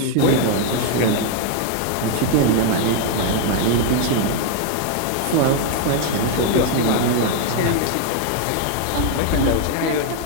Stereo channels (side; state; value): both; different; correlation 0.00